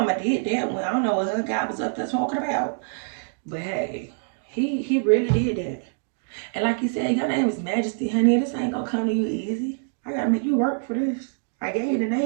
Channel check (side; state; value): left; silent; digital silence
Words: did that one. I don't know what her guy was up there talking about. But hey, he really did that. And like you said, your name is Majesty, honey. This ain't gonna come to you easy. I gotta make you work for this. I gave you the